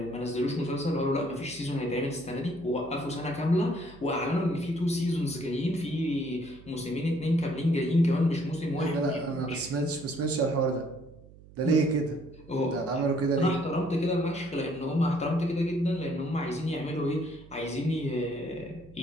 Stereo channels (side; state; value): right; noise; hum, 21 dB below the sound